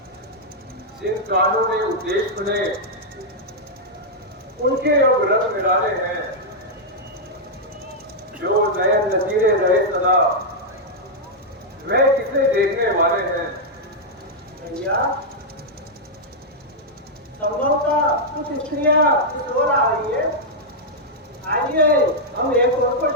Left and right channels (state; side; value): normal; both; correlation -0.05